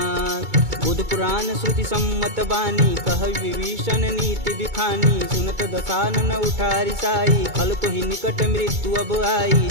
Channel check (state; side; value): late; left; 2.2 ms